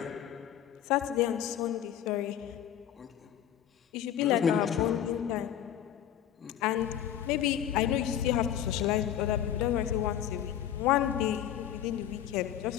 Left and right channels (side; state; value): right; quieter; 10.5 dB